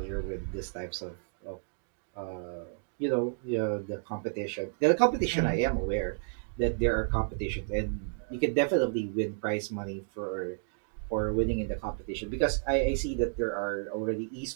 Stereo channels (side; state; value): left; silent; digital silence